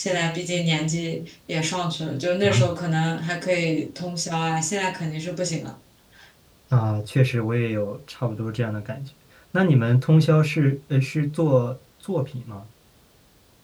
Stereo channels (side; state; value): both; identical; correlation 1.00